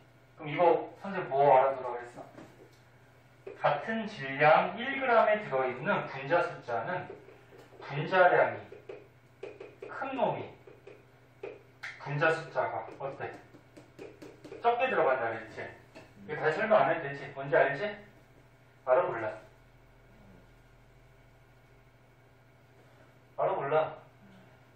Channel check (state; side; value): identical; both; correlation 1.00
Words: 그럼 이거 선생님 뭐 알아두라고 했어? 같은 질량 1g에 들어있는 분자 숫자는 분자량이 큰 놈이 분자 숫자가 어때? 적게 들어간다 그랬지? 이거 다시 설명 안 해도 되지? 뭔지 알지? 알아 몰라? 알아 몰라?